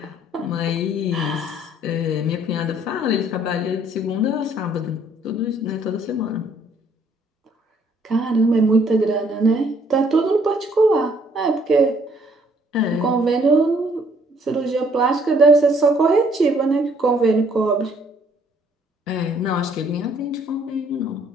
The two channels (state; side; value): normal; both; correlation 0.63